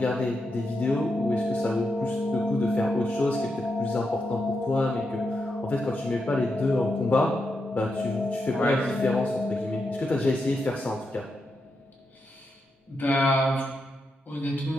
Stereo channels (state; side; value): normal; both; correlation 0.85